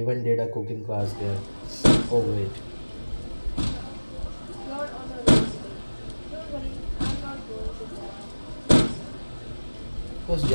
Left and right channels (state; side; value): inverted; both; correlation -1.00